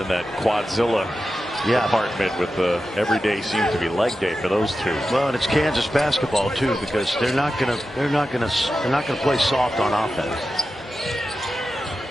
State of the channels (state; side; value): normal; both; correlation 0.92